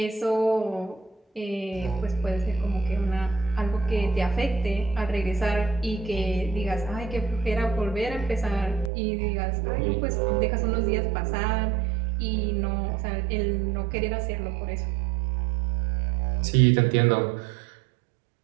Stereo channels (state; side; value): drops out; left; at 8.9 s